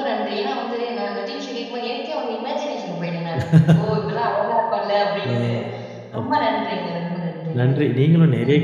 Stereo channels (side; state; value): both; identical; correlation 1.00